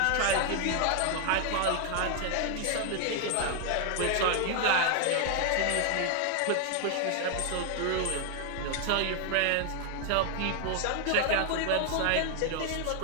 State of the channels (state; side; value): different; both; correlation 0.00